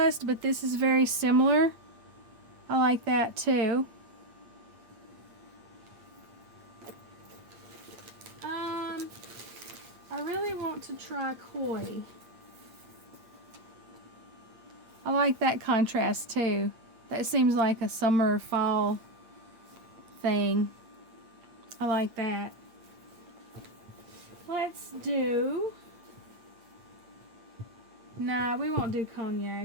but this is very similar. I like that too. I really want to try koi. I like that contrast too. That seems like a summer fall thing. I like that. Let's do... Nah, we won't do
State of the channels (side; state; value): left; late; 8.6 ms